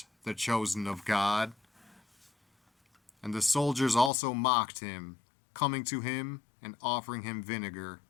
the chosen of God. And the soldiers also mocked him, coming to him and offering him vinegar,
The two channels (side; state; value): right; drops out; at 4.1 s